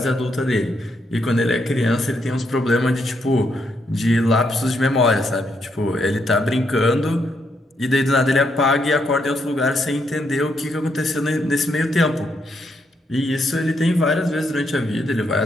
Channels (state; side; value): normal; both; correlation 0.77